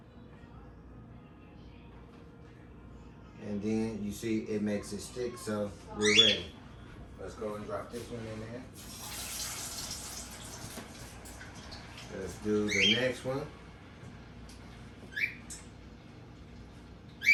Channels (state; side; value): identical; both; correlation 1.00